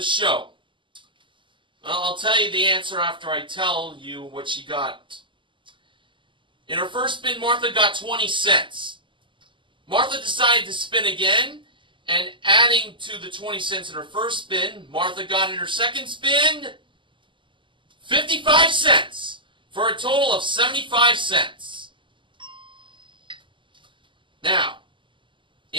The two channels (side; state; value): left; late; 0.24 ms